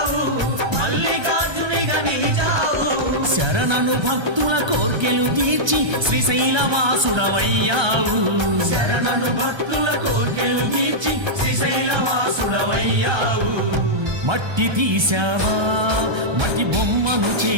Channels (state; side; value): late; left; 1.3 ms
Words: మల్లికార్జునిగా నిలిచావు శరణను భక్తుల కోర్కెలు తీర్చి శ్రీశైలవాసుడవయ్యావు శరణను భక్తుల కోర్కెలు తీర్చి శ్రీశైలవాసుడవయ్యావు మట్టి తీసావా మట్టి బొమ్మను